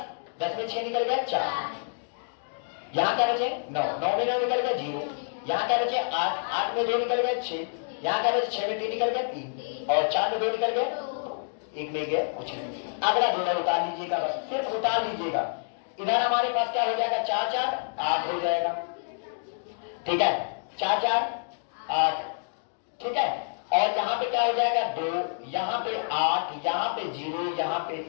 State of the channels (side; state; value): right; silent; digital silence